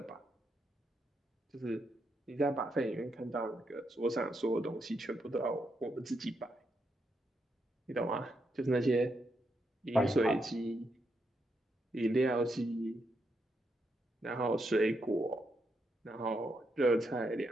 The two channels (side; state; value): both; normal; correlation 0.81